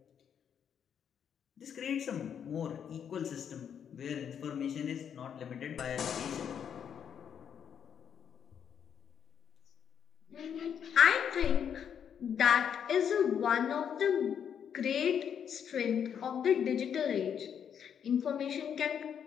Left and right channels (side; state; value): right; quieter; 8.2 dB